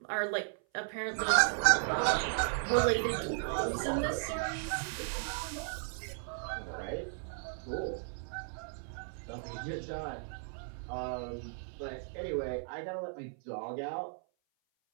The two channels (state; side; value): silent; left; 54 dB below the other